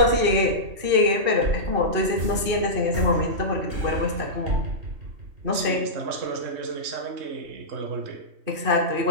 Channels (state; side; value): late; left; 3.2 ms